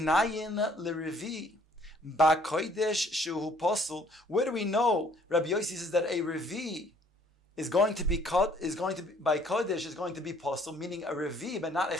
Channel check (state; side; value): normal; both; correlation 0.60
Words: lerevi ba kodesh shehu posel. Where do we know Rabbi Yosi says that a revi is going to be by kodesh is going to be posel, meaning a revi but not a